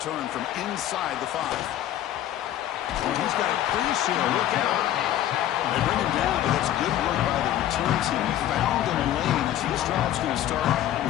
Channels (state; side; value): quieter; right; 12.4 dB